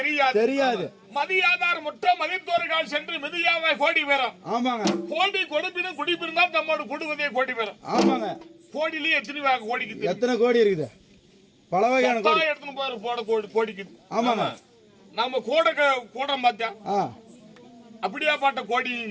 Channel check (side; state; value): both; identical; correlation 1.00